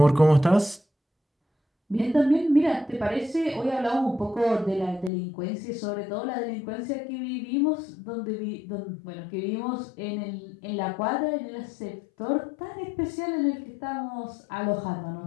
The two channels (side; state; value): right; drops out; at 5.1 s